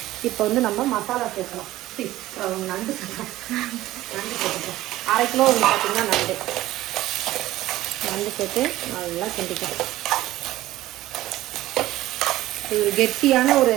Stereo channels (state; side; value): quieter; left; 15.8 dB